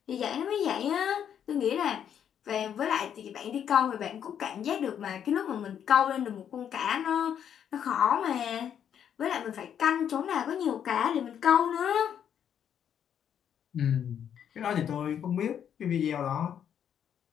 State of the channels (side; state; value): right; quieter; 8.9 dB